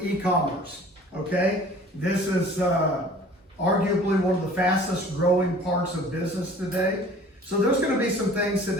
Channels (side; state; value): both; normal; correlation 0.48